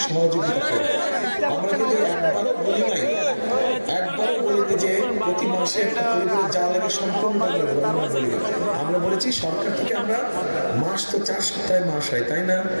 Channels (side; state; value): both; inverted; correlation -1.00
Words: সহযোগিতা করব। আমরা কিন্তু একবারও বলি নাই, একবারও বলিনি যে প্রতি মাসে একটা পরিবারের যা লাগে সম্পূর্ণ বলি। আমরা বলেছি সরকার থেকে আমরা মাস তো 4 সপ্তাহে মাস হয়, তাই না?